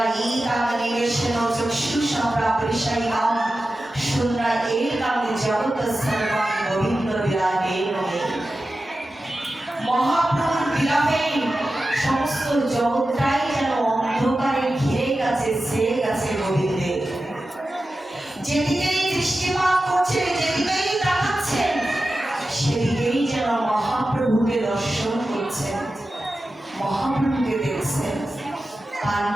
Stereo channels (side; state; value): both; normal; correlation 0.93